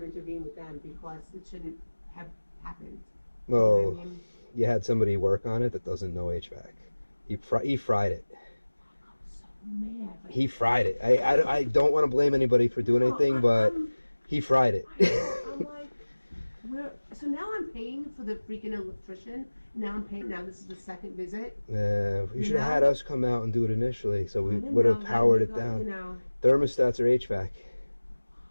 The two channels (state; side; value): inverted; both; correlation -1.00